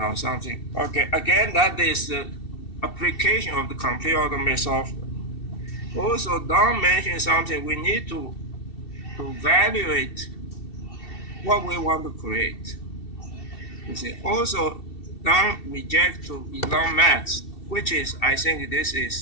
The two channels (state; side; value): late; right; 2.7 ms